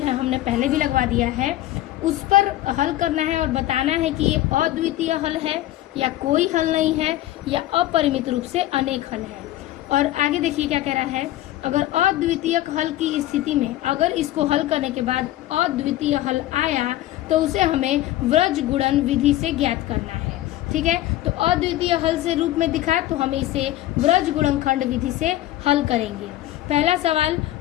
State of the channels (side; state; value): right; quieter; 14.8 dB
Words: हमने पहले भी लगवा दिया है, उस पर हल करना है और बताना है कि ये अद्वितीय हल है या कोई हल नहीं है या अपरिमित रूप से अनेक हल है। और आगे देखिए क्या कह रहा है, अगर अद्वितीय हल की स्थिति में अगर इसको हल करने के बाद अद्वितीय हल आया तो उसे हमें व्रज गुणन विधि से ज्ञात करना है। ठीक है, तो अद्वितीय हल से रूप में दिखा तो हम इसे व्रज गुणनखंड विधि से हल करेंगे। पहला सवाल,